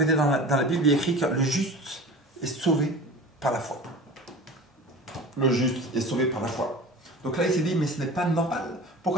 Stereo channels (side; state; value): both; normal; correlation 0.37